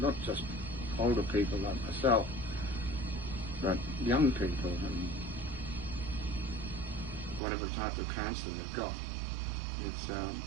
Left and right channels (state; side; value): drops out; left; at 7.4 s